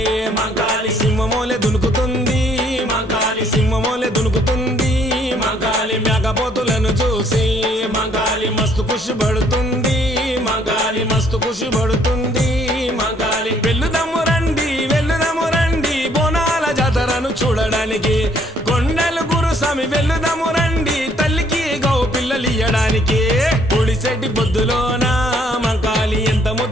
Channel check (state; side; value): normal; both; correlation 0.65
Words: మంకాలి సింహమో సింహమోలే దునుకుతుంది మంకాలి సింహమోలే దునుకుతుంది మంకాలి మేకపోతులను చూసి మంకాలి మస్తు ఖుషి పడుతుంది మంకాలి మస్తు ఖుషి పడుతుంది మంకాలి వెళ్లుదము రండి బోనాల జాతరను చూడడానికి కొండలు గురుస్వామి వెళ్లుదము రండి తల్లికి గౌ పిల్లలు ఇయ్యడానికి పొడిసెట్టి బొద్దులోన మంకాలి ఎంత